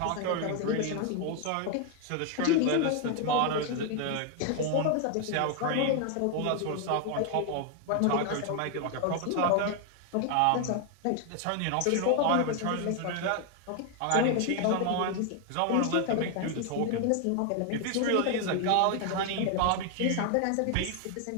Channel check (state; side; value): different; both; correlation 0.00